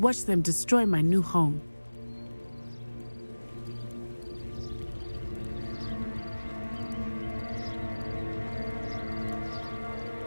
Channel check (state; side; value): inverted; both; correlation -1.00